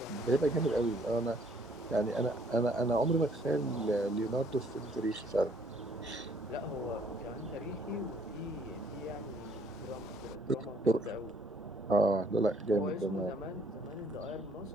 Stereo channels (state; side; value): normal; both; correlation 0.62